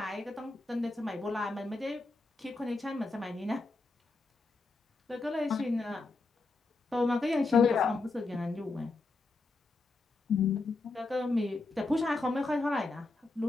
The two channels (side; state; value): right; quieter; 3.4 dB